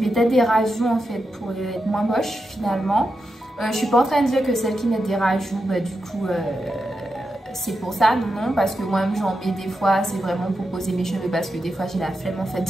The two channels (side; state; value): both; normal; correlation 0.88